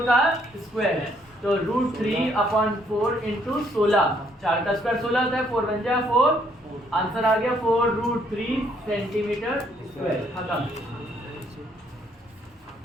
का स्क्वायर, तो √3/4 इंटू 16, 4 का स्क्वायर 16 होता है, 4 बन जाए 4, आंसर आ गया 4√3 सेंटीमीटर स्क्वायर। खत्म,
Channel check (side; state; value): both; normal; correlation 0.68